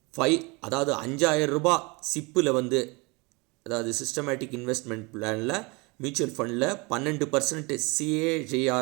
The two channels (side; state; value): left; quieter; 27.3 dB